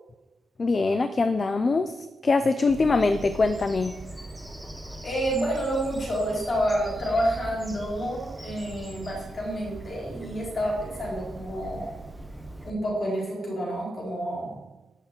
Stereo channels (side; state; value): both; normal; correlation 0.87